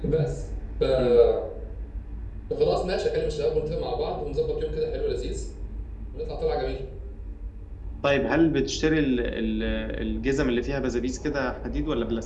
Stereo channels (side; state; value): both; identical; correlation 1.00